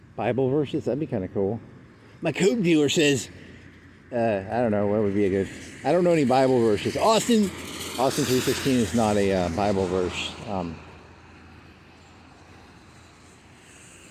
Bible verses. That'd be kind of cool. My coke dealer says, I don't know, what would be a good... I don't know any Bible verses. Austin 3:16 is not a Bible verse.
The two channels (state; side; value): identical; both; correlation 1.00